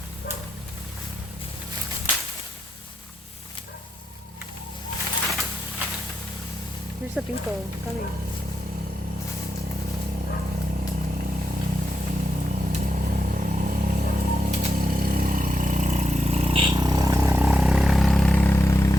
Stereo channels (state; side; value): normal; both; correlation 0.85